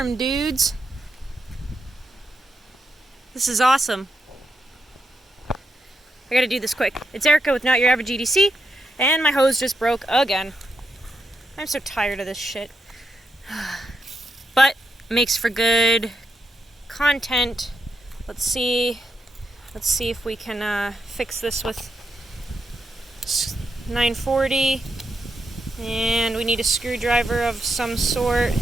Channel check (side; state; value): both; normal; correlation 0.83